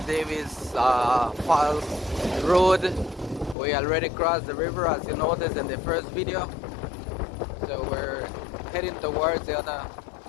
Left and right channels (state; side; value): drops out; right; at 3.6 s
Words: Davis Falls Road. We already crossed the river, as you noticed in the first video. So we're heading towards the